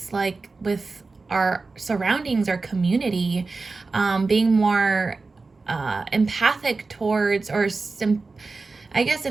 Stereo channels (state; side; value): quieter; left; 3.9 dB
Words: like with our surroundings, our community, being more empathic towards, or I guess